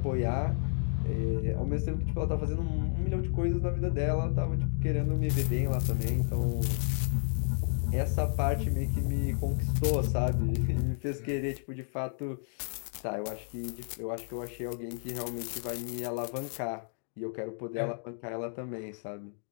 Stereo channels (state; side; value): silent; right; 57 dB below the other